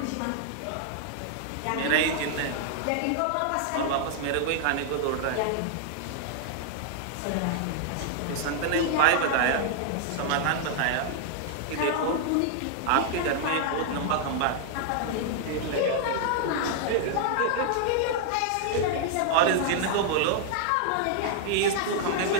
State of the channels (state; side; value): different; both; correlation -0.01